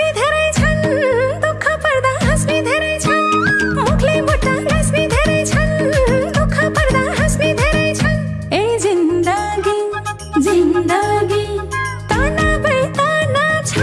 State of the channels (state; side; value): identical; both; correlation 1.00